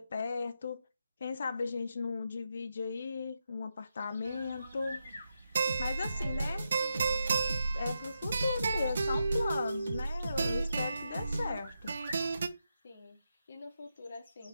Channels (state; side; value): inverted; both; correlation -0.86